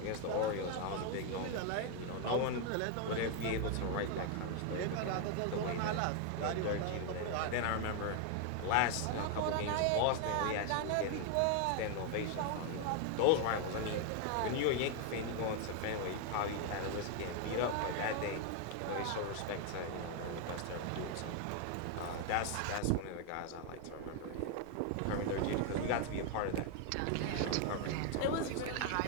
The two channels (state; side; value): different; both; correlation 0.00